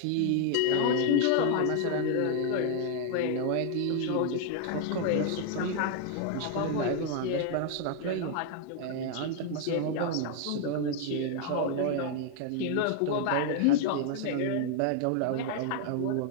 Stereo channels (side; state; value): both; different; correlation 0.00